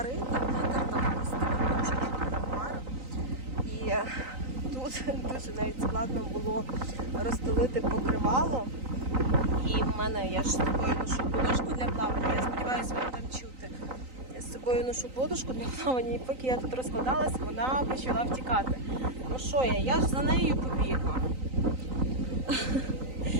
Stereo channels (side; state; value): left; late; 3.9 ms